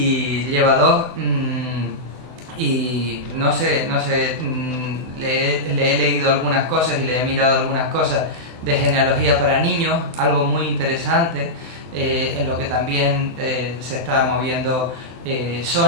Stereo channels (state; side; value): late; left; 24 ms